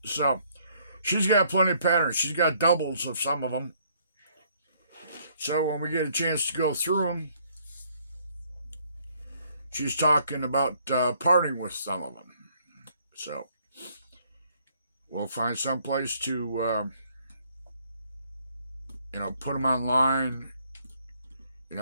So she's got plenty of patterns. She's got doubles of some of them. So when we get a chance to go through them, she's talking about parting with some of them. So we'll find some place to, put them online.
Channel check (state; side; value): inverted; both; correlation -0.66